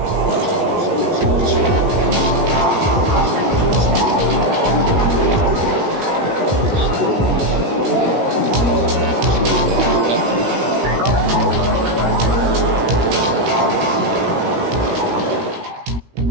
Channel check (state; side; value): late; left; 17 ms